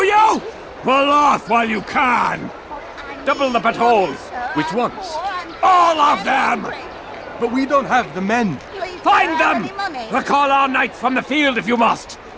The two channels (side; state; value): both; identical; correlation 1.00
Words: Well, laugh while you can. Double the patrols. Which ones? All of them! But we don't have the men. Find them! Recall our knights from the field if you must.